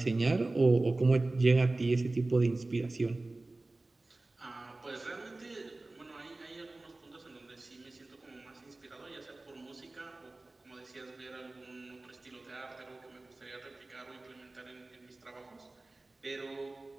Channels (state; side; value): quieter; left; 3.0 dB